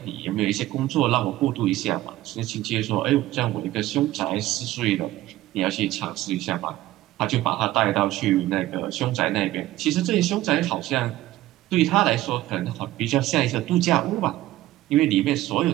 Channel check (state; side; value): quieter; left; 15.7 dB